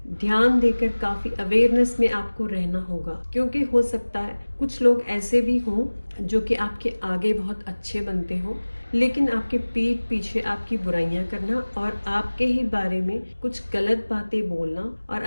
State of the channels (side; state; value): both; inverted; correlation -1.00